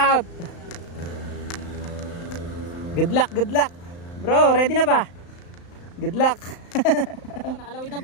Good luck, good luck. Bro, ready na ba? Good luck. Nakalawid na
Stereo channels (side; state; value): right; late; 35 ms